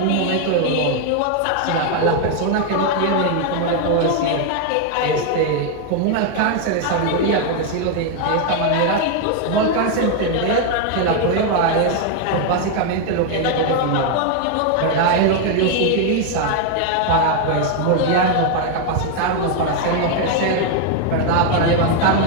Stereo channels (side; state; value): both; different; correlation 0.01